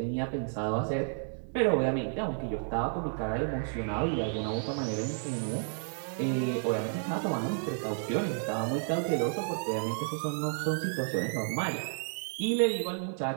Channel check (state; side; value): silent; left; digital silence